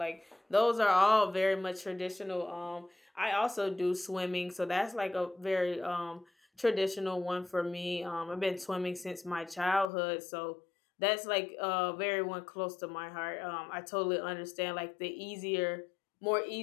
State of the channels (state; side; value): drops out; right; at 9.9 s